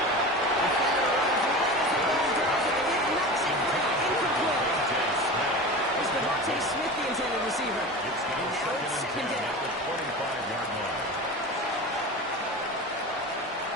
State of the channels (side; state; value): both; normal; correlation 0.30